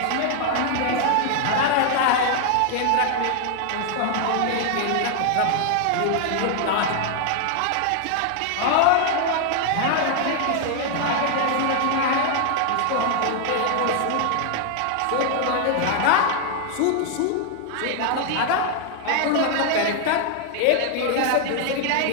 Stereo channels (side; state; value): both; different; correlation 0.00